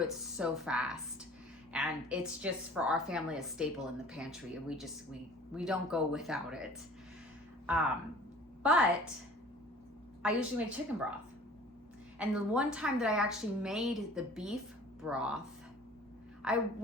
so fast. And it's just for our family a staple in the pantry, and we don't go without it. But I usually make chicken broth. And the one time that I actually made the beef broth, I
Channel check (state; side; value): normal; both; correlation 0.48